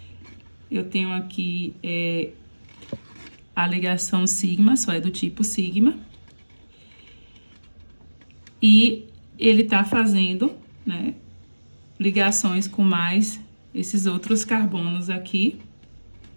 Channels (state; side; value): inverted; both; correlation -1.00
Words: eu tenho aqui a ligação sigma, só é do tipo sigma. E ele tá fazendo, né, ligações com mais esses outros carbonos aqui.